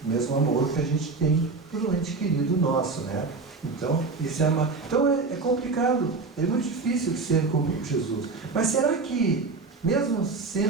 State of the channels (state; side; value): quieter; left; 4.1 dB